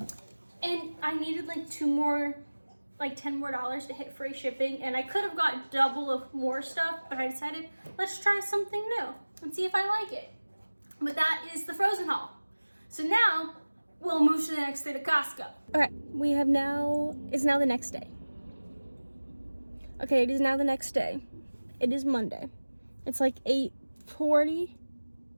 And I needed like 2 more, like $10 more to hit free shipping. And I could have got double of more stuff, but I decided, let's try something new and see if I like it. But that is the frozen haul. So now we'll move to the next day to Costco. Okay, it's now the next day. Okay, it is now the next day. It is Monday. It's like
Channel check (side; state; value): both; inverted; correlation -1.00